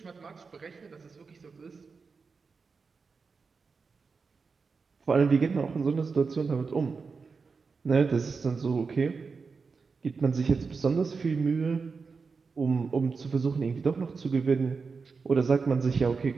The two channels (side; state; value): left; quieter; 4.9 dB